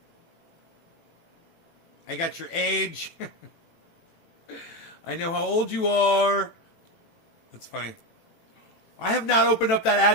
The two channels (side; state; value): right; late; 18 ms